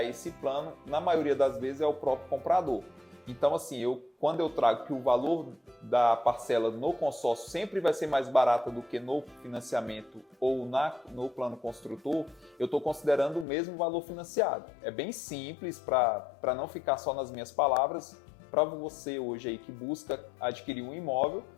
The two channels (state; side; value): drops out; right; at 13.5 s